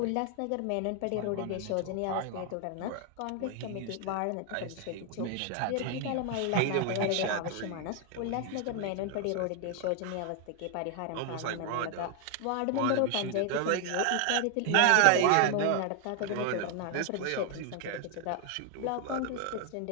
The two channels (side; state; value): both; different; correlation 0.00